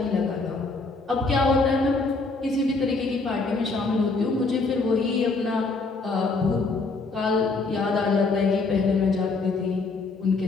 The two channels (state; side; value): quieter; right; 3.8 dB